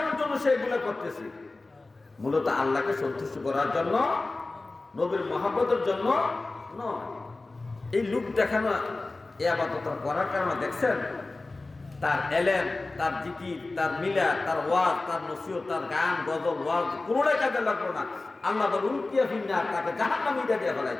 জন্য সে এগুলো করতেছে। মূলত আল্লাহকে সন্তুষ্ট করার জন্য, নবীর মহব্বতের জন্য নয়। এই লোক দেখানো এই আবাদত করার কারণে দেখছেন তার এলেম, তার জিকির, তার মিলা, তার ওয়াজ, তার নসিহত, তার গান, গজল, ওয়াজ কোনোটাই কাজে লাগলো না। আল্লাহ বলে উল্টিয়া ফিন্নার, তাকে জাহান্নামীটা দিয়ে ফেলাই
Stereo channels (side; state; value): right; quieter; 3.3 dB